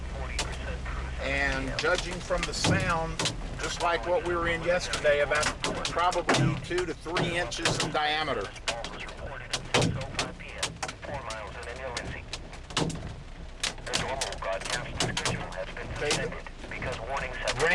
And judging from the sound, just like what we were in yesterday, about probably 2 to 3 inches in diameter. Okay,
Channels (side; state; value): both; identical; correlation 1.00